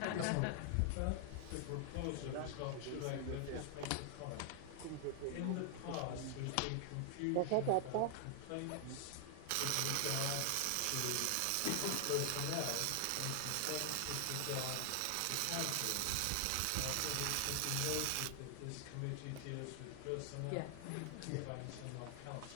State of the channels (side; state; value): both; different; correlation 0.00